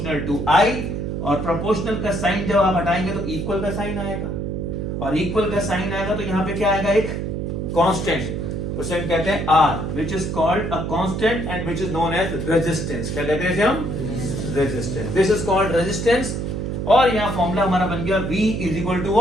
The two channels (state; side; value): noise; right; hum, 3 dB below the sound